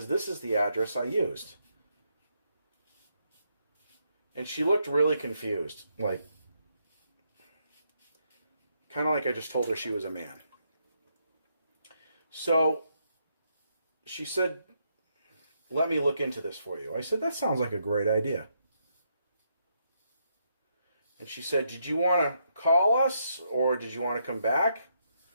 this is the address I used. And she looked really confused, like, kind of like I just told her she was a man. So she said, let me look into this for you. I said, that sounds like a great idea. And she said, did you want to call us or did you want to come back?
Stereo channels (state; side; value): inverted; both; correlation -0.77